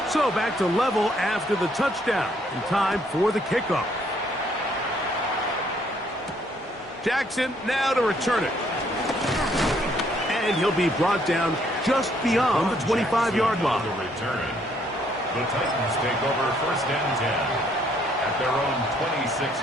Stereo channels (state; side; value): normal; both; correlation 0.67